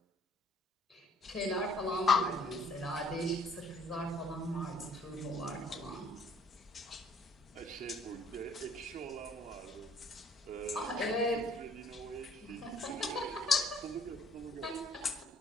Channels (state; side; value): normal; both; correlation 0.59